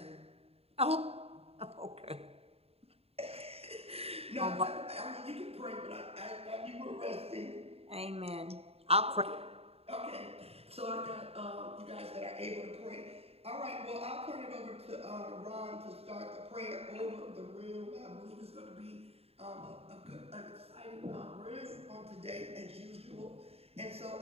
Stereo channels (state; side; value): late; left; 0.29 ms